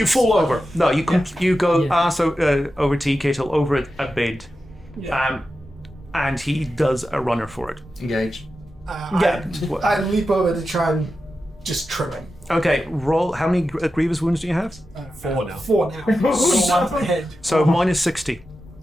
fall over. No, you go Yeah. over Tea Kettle over a bed, Yeah. and he does a runner for it. Engage. Yeah. I leap over to try and just trim him. Okay, roll. How many grievous wounds do you have? 4 now. 4 now. So one per head. So -60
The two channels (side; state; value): both; normal; correlation 0.91